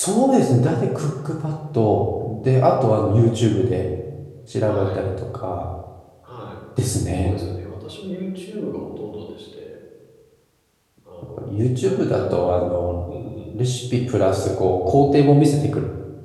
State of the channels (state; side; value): identical; both; correlation 1.00